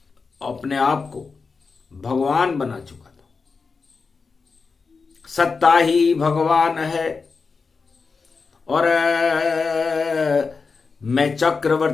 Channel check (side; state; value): right; quieter; 4.7 dB